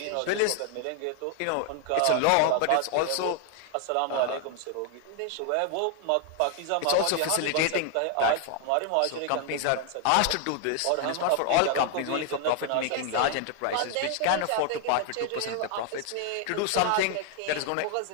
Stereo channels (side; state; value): both; different; correlation 0.00